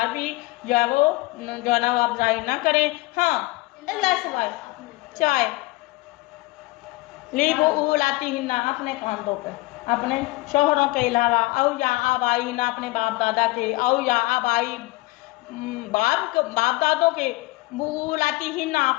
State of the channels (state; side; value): quieter; right; 21.8 dB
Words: भी जो है वो जो है ना वो आप जाहिर ना करें। हाँ अल्लाह सवाल चाय ली वो लाती हिन्ना, अपने कांधों पर, अपने शोहरों के अलावा, औ या आबाई ना, अपने बाप दादा के, औ या आबाई बाप दादों के, वो लाती हिन्ना,